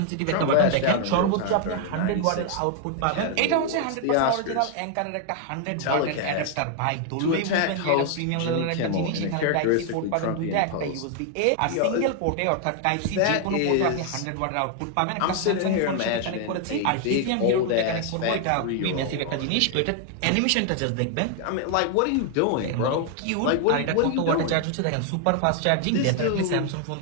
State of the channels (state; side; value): different; both; correlation 0.00